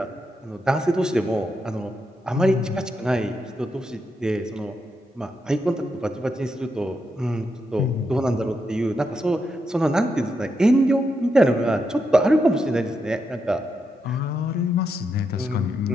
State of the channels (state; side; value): normal; both; correlation 0.83